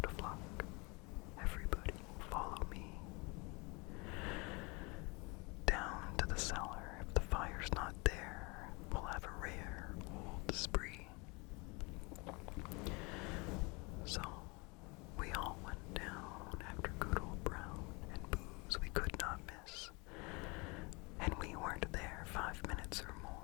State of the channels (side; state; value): right; quieter; 28.0 dB